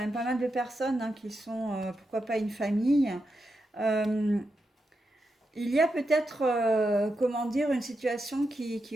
pas mal de personnes hein, qui sont, pourquoi pas une famille. Euh, il y a peut-être, comment dire, une situation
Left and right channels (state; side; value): normal; both; correlation 0.87